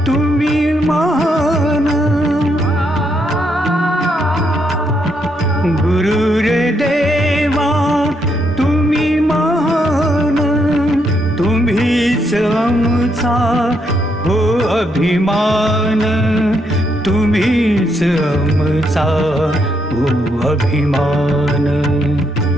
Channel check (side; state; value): both; normal; correlation 0.77